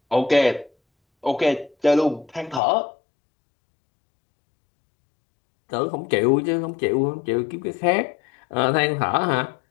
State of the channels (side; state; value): right; drops out; at 2.6 s